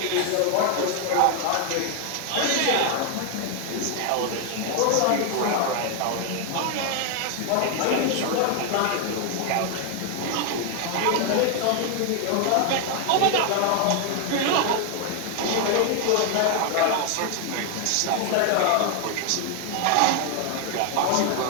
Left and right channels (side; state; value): both; different; correlation 0.00